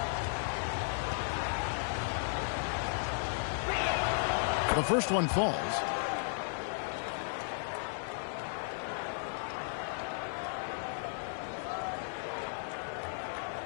The first one falls.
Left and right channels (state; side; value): silent; right; 54 dB below the other